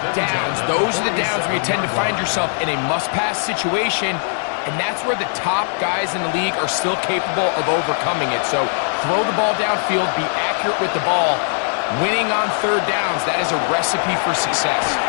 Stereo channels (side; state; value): right; silent; digital silence